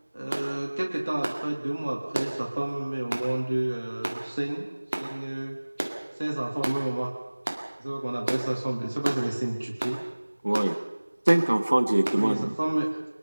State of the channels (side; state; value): both; inverted; correlation -1.00